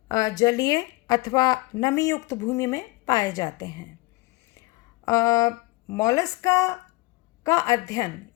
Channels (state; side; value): quieter; right; 22.3 dB